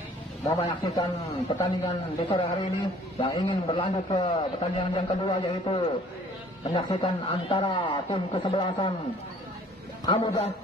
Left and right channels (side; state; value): both; normal; correlation 0.54